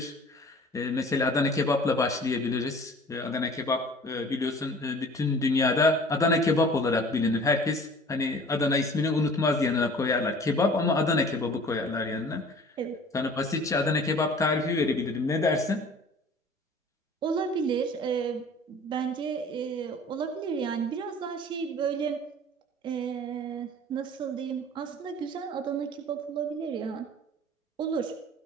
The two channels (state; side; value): normal; both; correlation 0.47